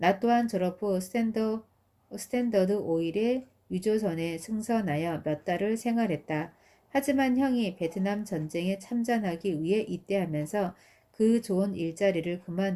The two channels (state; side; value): identical; both; correlation 1.00